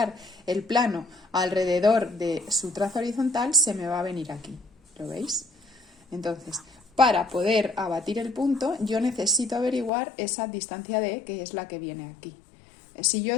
el plano alrededor de su traza horizontal, se me va a venir aquí. ¿Lo veis? Entonces, para poder abatir el punto, yo necesito averiguar esa distancia D, que es la que viene aquí. Si yo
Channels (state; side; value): drops out; right; at 9.9 s